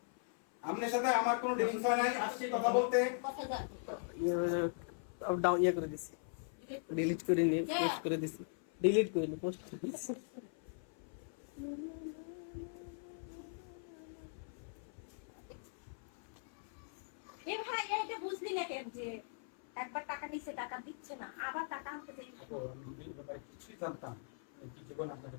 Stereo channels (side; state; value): right; silent; 51 dB below the other